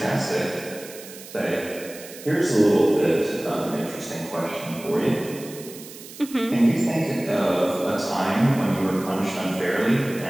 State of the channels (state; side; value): noise; right; hiss, 16 dB below the sound